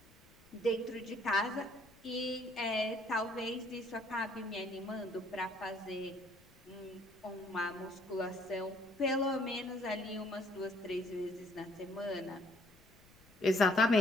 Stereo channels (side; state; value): left; noise; rumble, 27 dB below the sound